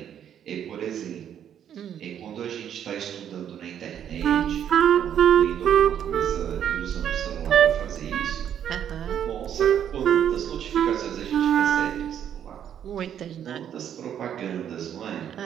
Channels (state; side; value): quieter; left; 9.5 dB